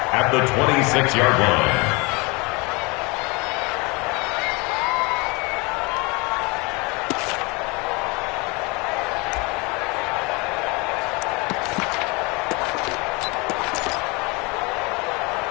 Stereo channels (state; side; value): quieter; right; 27.4 dB